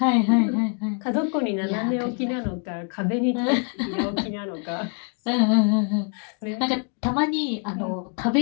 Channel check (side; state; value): right; quieter; 37.5 dB